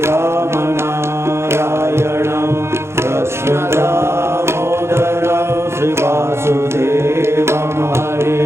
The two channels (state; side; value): late; left; 0.13 ms